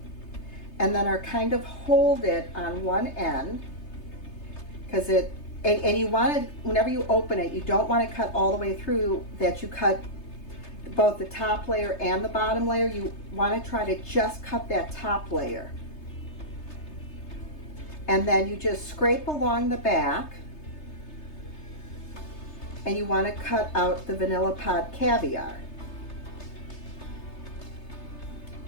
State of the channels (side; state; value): right; late; 3.3 ms